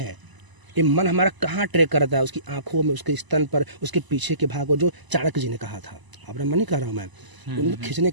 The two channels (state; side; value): late; left; 1.0 ms